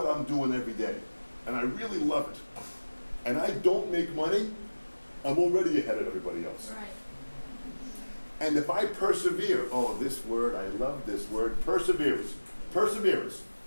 I'm doing every day, and I really love it, and I don't make money, I'm already ahead of everybody else. Right. And if I persevere, oh, this word, I love this word, perseverance. Perseverance.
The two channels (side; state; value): both; inverted; correlation -1.00